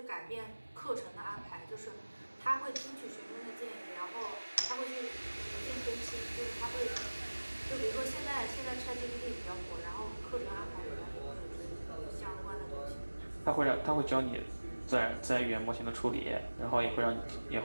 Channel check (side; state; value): both; inverted; correlation -1.00